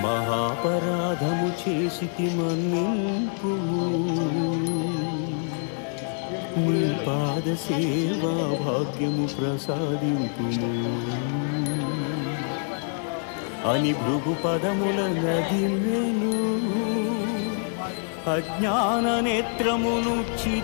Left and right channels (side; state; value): right; silent; 61 dB below the other